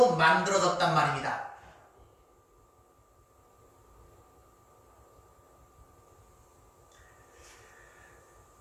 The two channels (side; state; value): both; identical; correlation 1.00